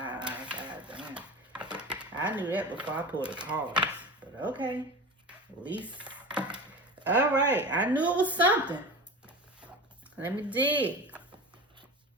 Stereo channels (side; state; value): both; normal; correlation 0.30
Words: knew that before I pulled the cards. But okay. At least. Alright. I knew it was something. Let me dig.